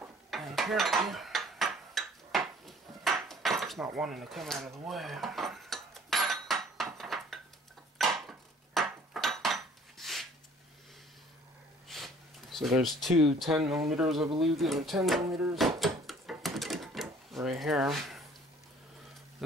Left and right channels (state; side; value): normal; both; correlation 0.54